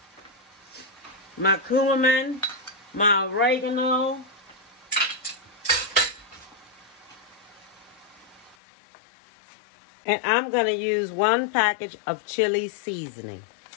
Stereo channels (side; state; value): right; drops out; at 8.6 s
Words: my cumin, my oregano, and I'm going to use 1 package of chili seasoning,